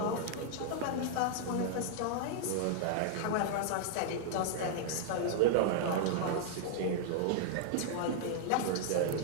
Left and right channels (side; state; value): both; different; correlation 0.00